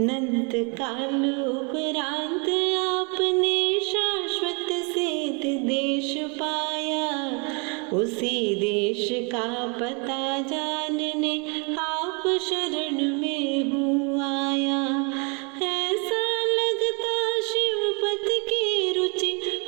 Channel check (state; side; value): quieter; left; 33.9 dB